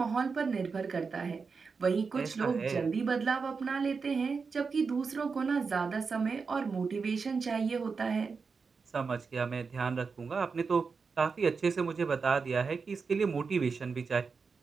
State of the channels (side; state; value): left; quieter; 5.0 dB